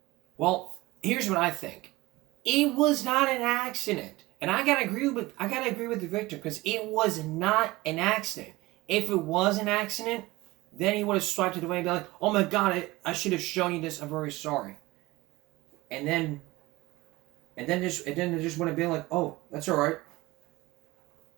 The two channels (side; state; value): left; quieter; 20.2 dB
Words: Well, here's what I think. It was not an accident. And I gotta agree with the victim, because it was not an accident. If it was an accident, then he would have swiped it away and be like, "Oh my God, I should have shown you this. I'm very sorry." And then they just would have been like, "Oh, that's all right."